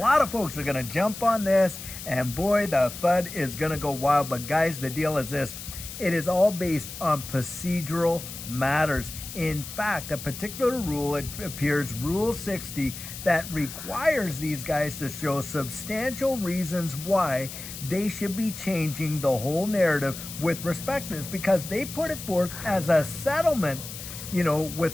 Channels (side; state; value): left; noise; hiss, 11 dB below the sound